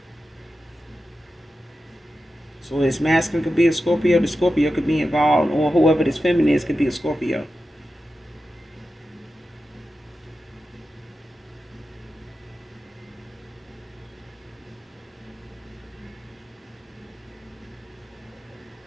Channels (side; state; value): both; normal; correlation 0.92